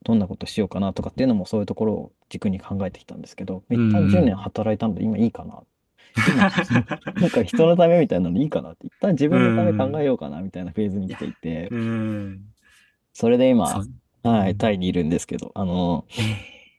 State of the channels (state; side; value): identical; both; correlation 1.00